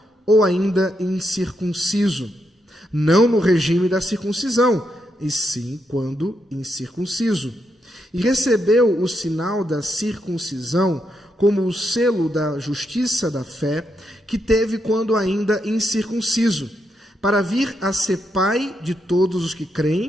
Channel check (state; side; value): normal; both; correlation 0.81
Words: ou ainda incircunciso? Não no regime da circuncisão, e sim quando incircunciso. E recebeu o sinal da circuncisão como o selo da justiça da fé que teve quando ainda incircunciso, para vir a ser pai de todos os que